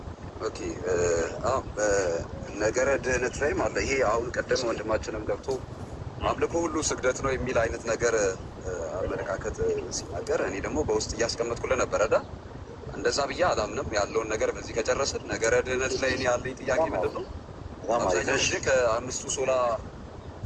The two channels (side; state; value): both; identical; correlation 1.00